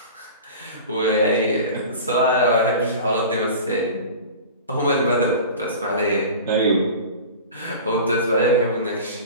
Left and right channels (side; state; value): both; inverted; correlation -0.36